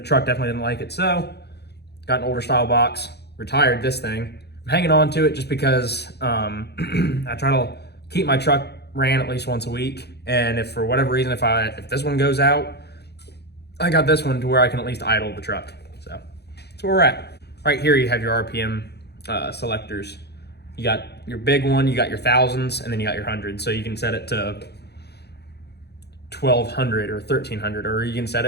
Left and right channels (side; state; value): right; late; 0.48 ms